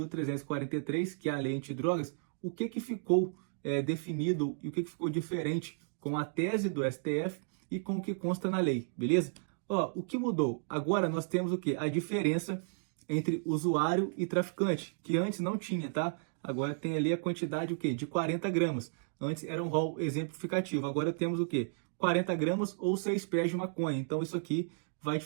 que é a Lei Antidrogas, o que ficou definido e o que ficou diferente com a tese do STF e com o que consta na lei, beleza? Ó, o que mudou? Agora nós temos o que? A diferença entre usuário e traficante, que antes não tinha, tá? Agora tem ali a quantidade o quê? De 40 gramas. Antes era um rol exemplificativo. Agora temos o quê? 40 gramas ou 6 pés de maconha. Então isso aqui vai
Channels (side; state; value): left; silent; digital silence